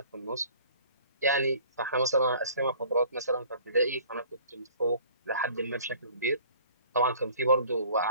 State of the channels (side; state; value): both; inverted; correlation -0.51